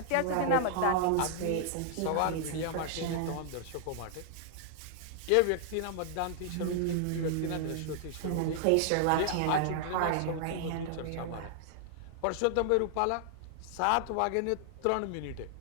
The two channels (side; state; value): both; different; correlation 0.00